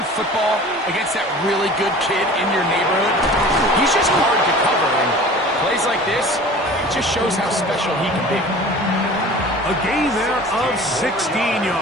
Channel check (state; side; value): normal; both; correlation 0.42